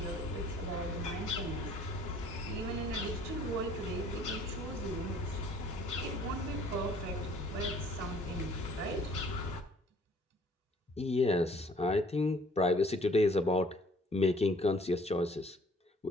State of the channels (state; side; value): normal; both; correlation 0.57